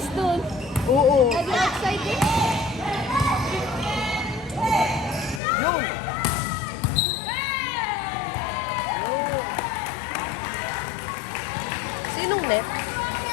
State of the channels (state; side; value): drops out; right; at 5.4 s